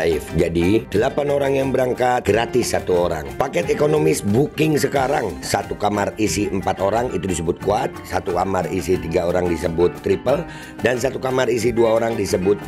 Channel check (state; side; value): identical; both; correlation 1.00